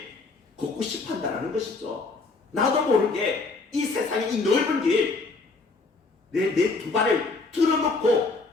걷고 싶어 한다는 것이죠. 나도 모르게 이 세상의 이 넓은 길 내 두 발을 틀어놓고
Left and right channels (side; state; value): right; quieter; 3.8 dB